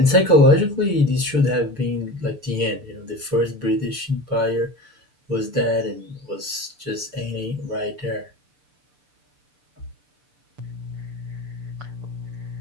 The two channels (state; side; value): late; left; 6.8 ms